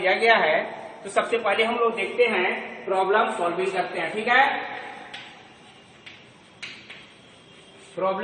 गया है। तो सबसे पहले हम लोग देखते हैं, प्रॉब्लम सॉल्विंग करते हैं। ठीक है,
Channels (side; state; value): both; identical; correlation 1.00